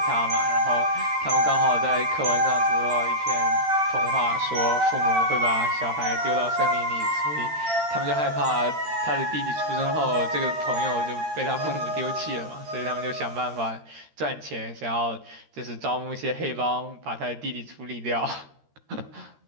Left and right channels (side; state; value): left; late; 13 ms